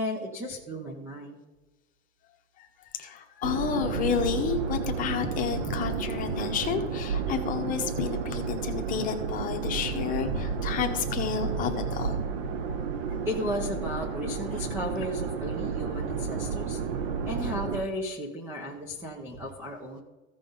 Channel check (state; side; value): normal; both; correlation -0.03